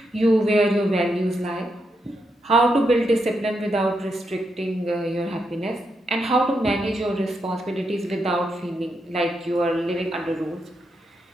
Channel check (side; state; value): both; normal; correlation 0.82